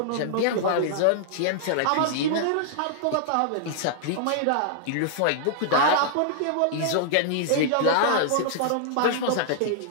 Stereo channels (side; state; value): both; different; correlation -0.01